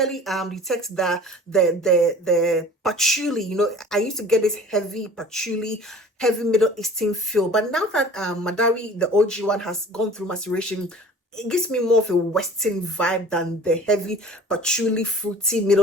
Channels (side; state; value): both; normal; correlation 0.45